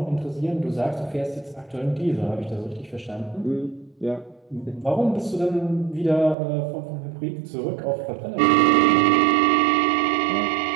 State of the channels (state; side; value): drops out; left; at 6.4 s